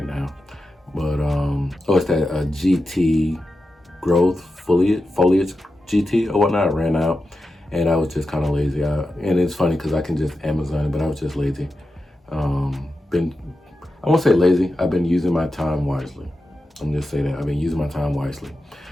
now. But it's that GT growth foliage GT or whatnot. I ran out and I was just kind of lazy. And it's funny because I can just Amazon it, but I was just lazy. I won't say lazy, I've been using my time wisely. I'm just saying that I've been using my time wisely.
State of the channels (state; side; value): normal; both; correlation 0.90